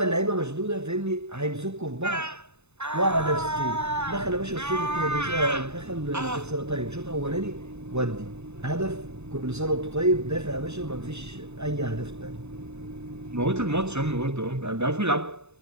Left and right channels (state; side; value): late; left; 0.81 ms